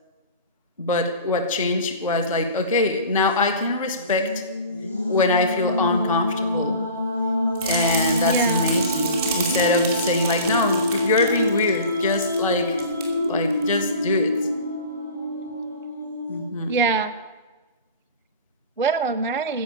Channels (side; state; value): both; inverted; correlation -0.39